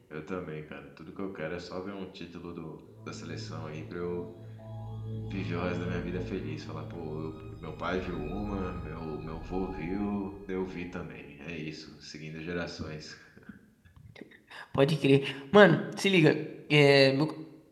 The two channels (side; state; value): both; identical; correlation 1.00